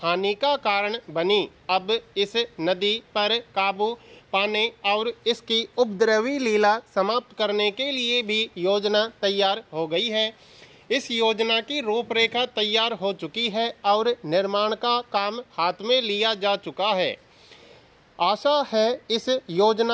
हानि का कारण बनी। अब इस नदी पर काबू पाने और इसकी उपद्रवी लीला समाप्त करने के लिए भी योजना तैयार हो गई है। इस योजना की रूपरेखा तैयार हो चुकी है और निर्माण का काम हाथ में लिया जा चुका है। आशा है इस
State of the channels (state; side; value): identical; both; correlation 1.00